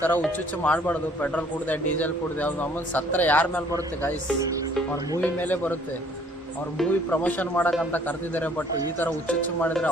ತರ ಹುಚ್ಚುಚ್ಚು ಮಾಡಬಾರ್ದು. ಪೆಟ್ರೋಲ್ ಕುಡ್ದೆ ಡೀಸೆಲ್ ಕುಡ್ದೆ ಅವ್ನು ನಮ್ಮನ್ನು ಸತ್ರ ಯಾರ ಮೇಲೆ ಬರುತ್ತೆ ಗೈಸ್? ಅವ್ರ ಮೂವಿ ಮೇಲೆ ಬರುತ್ತೆ. ಅವ್ರ ಮೂವಿ ಪ್ರಮೋಷನ್ ಮಾಡಕ್ಕಂತ ಕರೆದಿದ್ದಾರೆ, ಬಟ್ ಈ ತರ ಹುಚ್ಚುಚ್ಚು ಮಾಡಿದ್ರೆ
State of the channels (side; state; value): both; normal; correlation 0.59